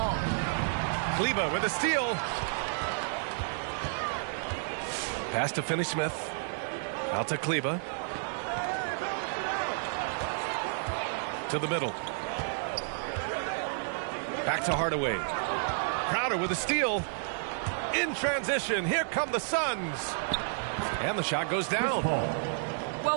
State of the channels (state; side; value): silent; left; digital silence